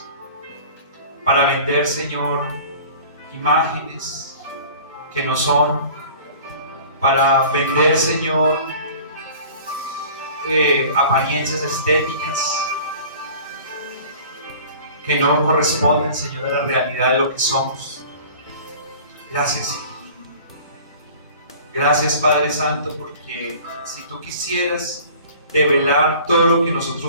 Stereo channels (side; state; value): both; inverted; correlation -0.44